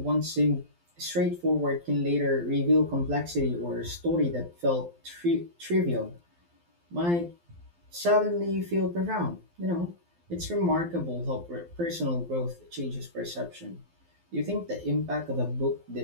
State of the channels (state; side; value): late; left; 12 ms